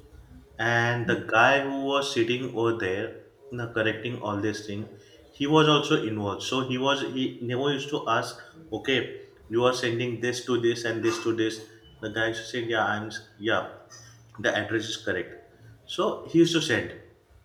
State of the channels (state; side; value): identical; both; correlation 1.00